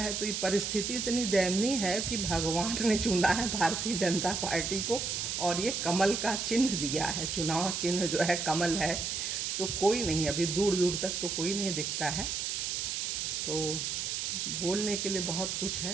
तो ये परिस्थिति इतनी दयनीय है कि भगवान ने चुना है भारतीय जनता पार्टी को और ये कमल का चिन्ह दिया है। चुनाव चिन्ह जो है कमल है, तो कोई नहीं, अभी दूर दूर तक तो कोई नहीं दिखता है। तो बोलने के लिए बहुत कुछ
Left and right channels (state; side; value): noise; right; hiss, 2 dB below the sound